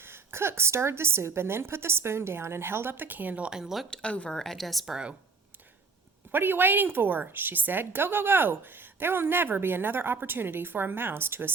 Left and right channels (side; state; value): left; quieter; 4.6 dB